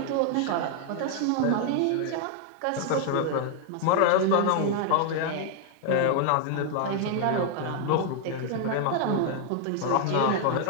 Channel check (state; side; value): different; both; correlation 0.00